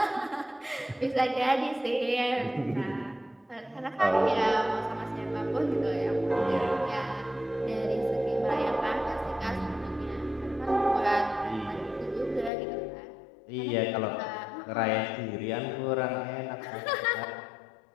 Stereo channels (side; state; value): right; drops out; at 12.5 s